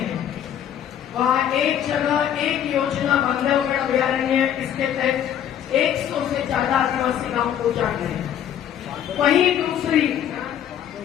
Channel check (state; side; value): quieter; right; 9.9 dB